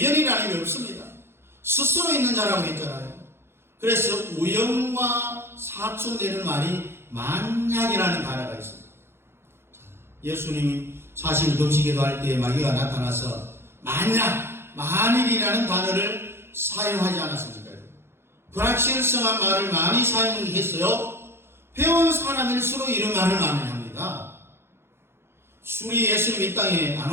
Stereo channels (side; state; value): left; late; 0.12 ms